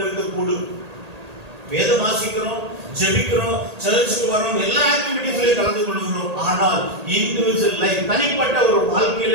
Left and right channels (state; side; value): late; left; 1.8 ms